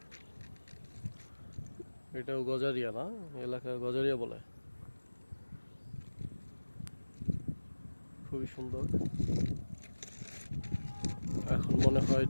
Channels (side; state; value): both; inverted; correlation -1.00